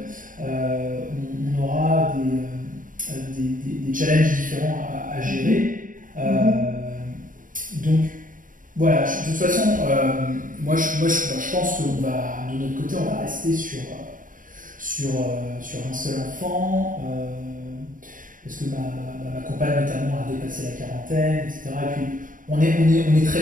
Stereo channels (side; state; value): left; late; 0.39 ms